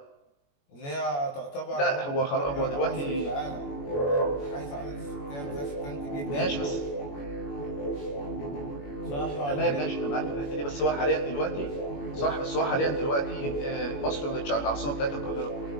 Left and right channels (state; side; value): late; right; 21 ms